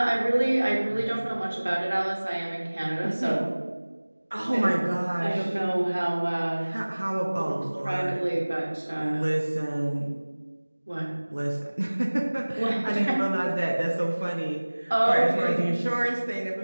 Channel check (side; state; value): both; inverted; correlation -1.00